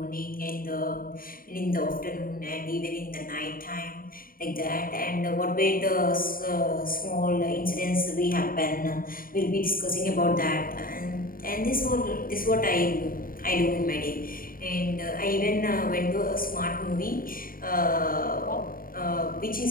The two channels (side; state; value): right; late; 0.41 ms